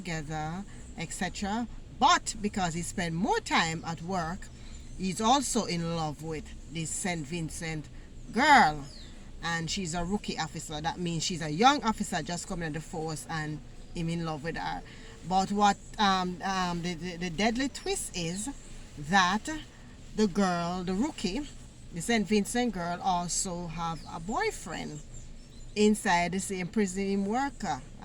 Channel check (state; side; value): identical; both; correlation 1.00